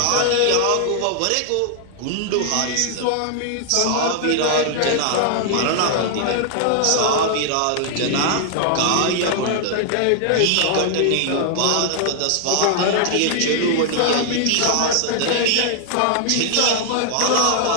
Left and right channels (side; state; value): both; different; correlation -0.01